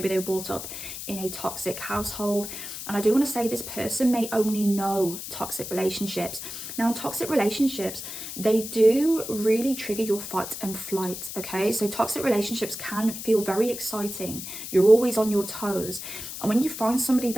they were brought up in a toxic household. And I do want to say, this person may only know toxic relationships. Now, in toxic relationships, they do really trigger your fight and flight, okay? So toxic relationships can feel very exciting. You're always on your toes. And when you find somebody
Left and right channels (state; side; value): noise; left; hiss, 8 dB below the sound